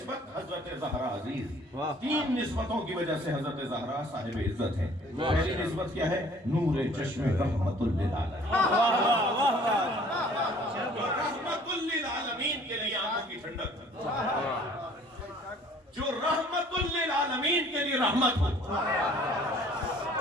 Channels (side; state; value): both; normal; correlation 0.54